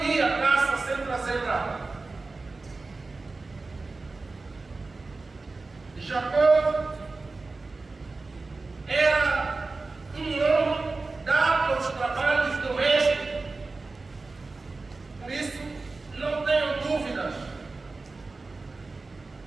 ia à caça sem trazer nada. Jacó era um homem dado aos trabalhos domésticos. Por isso, não tenham dúvidas.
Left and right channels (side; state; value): left; quieter; 3.7 dB